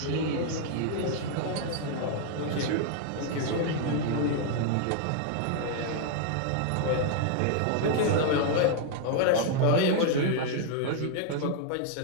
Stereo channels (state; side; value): different; both; correlation 0.00